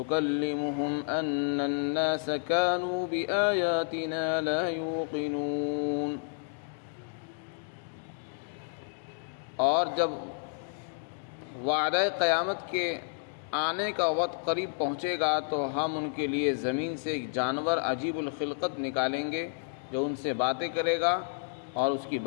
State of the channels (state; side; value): silent; right; digital silence